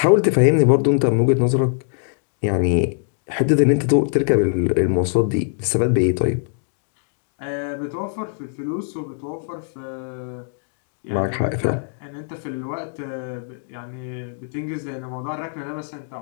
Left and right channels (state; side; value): silent; right; digital silence